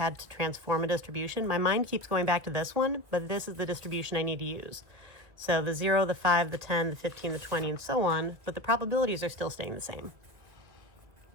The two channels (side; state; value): left; late; 2.0 ms